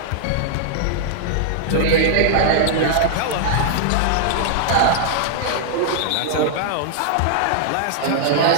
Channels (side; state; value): both; different; correlation -0.01